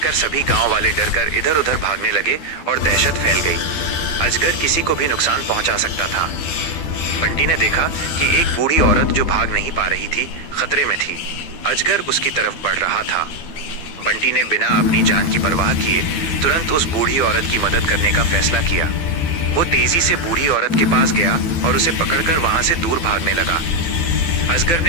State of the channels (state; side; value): late; right; 12 ms